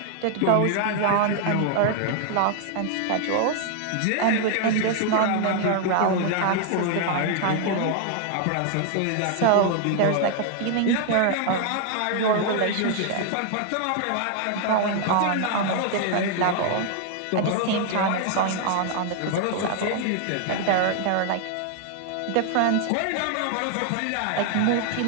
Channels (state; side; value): different; both; correlation 0.00